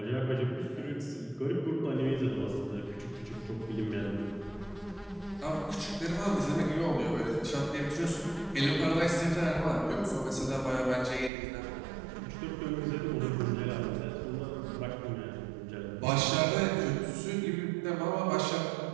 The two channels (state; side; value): drops out; left; at 11.3 s